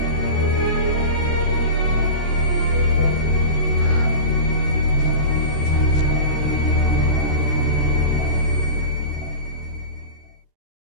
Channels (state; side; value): late; right; 14 ms